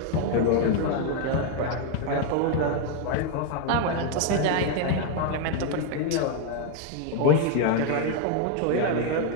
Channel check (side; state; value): both; different; correlation 0.01